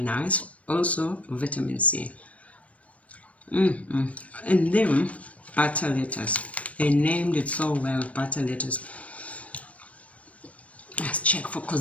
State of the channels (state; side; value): late; right; 0.065 ms